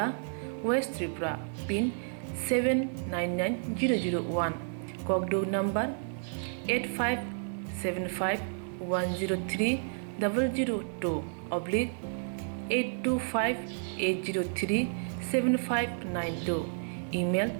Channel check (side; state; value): left; silent; digital silence